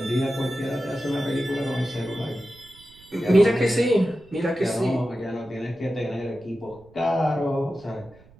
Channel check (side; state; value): right; noise; rumble, 26 dB below the sound